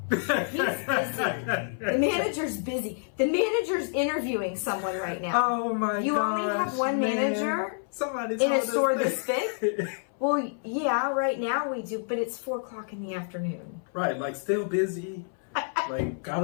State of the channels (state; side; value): silent; right; 58 dB below the other